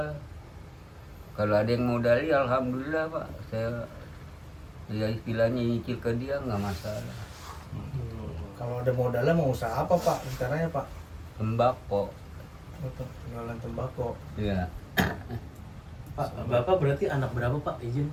Kalau ada yang modali, alhamdulillah Pak. Saya ya istilahnya nyicil ke dia nggak masalah. Kalau ada modalnya mau usaha apa, Pak? Rencananya, Pak? Tembakau, Untuk jualan tembakau. ya. Pak, Bapak berarti anak berapa Pak? Izin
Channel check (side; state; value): both; identical; correlation 1.00